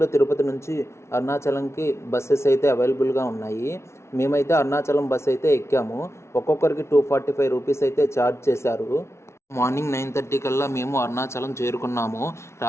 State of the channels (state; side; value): late; right; 0.13 ms